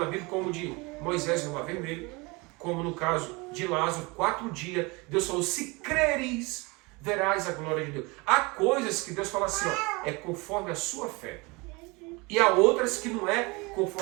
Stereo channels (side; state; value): left; quieter; 26.2 dB